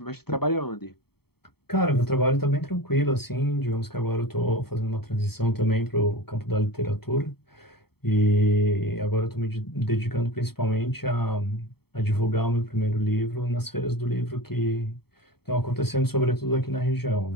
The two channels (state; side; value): late; right; 0.96 ms